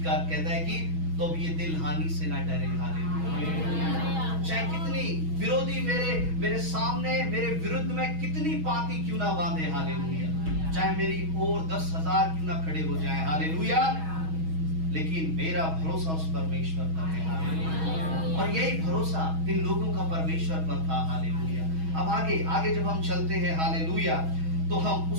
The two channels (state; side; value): late; left; 6.2 ms